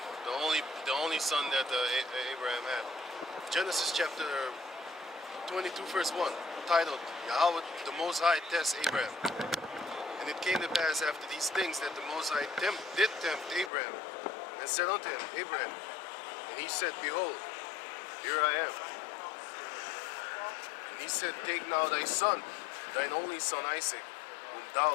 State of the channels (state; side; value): drops out; right; at 13.7 s